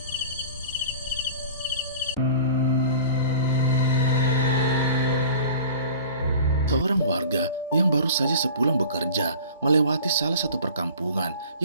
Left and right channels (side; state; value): both; inverted; correlation -0.42